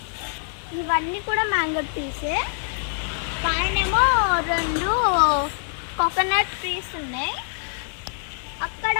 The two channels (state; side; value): silent; right; digital silence